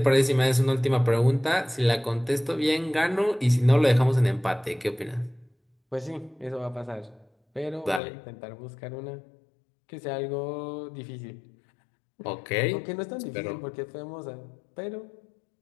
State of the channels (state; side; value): drops out; right; at 8.0 s